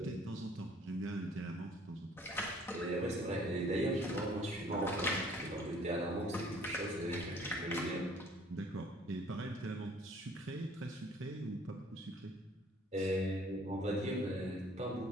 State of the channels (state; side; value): normal; both; correlation 0.56